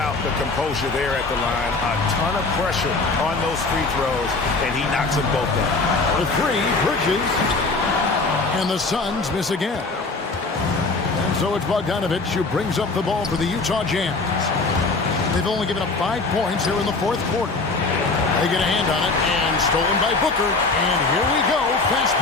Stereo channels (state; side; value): quieter; right; 3.7 dB